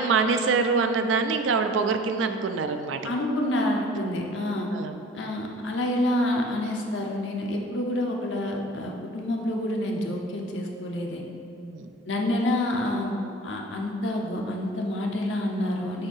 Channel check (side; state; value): both; normal; correlation 0.45